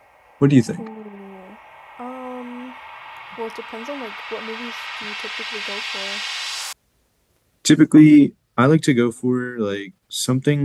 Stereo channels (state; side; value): identical; both; correlation 1.00